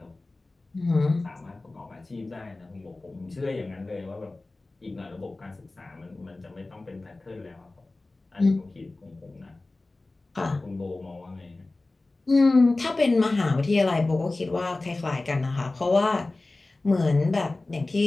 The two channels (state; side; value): quieter; right; 3.1 dB